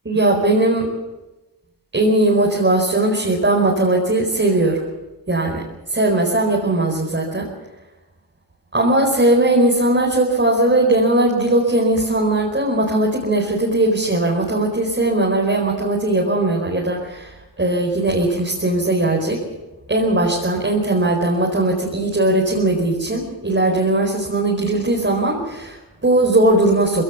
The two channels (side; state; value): both; normal; correlation 0.05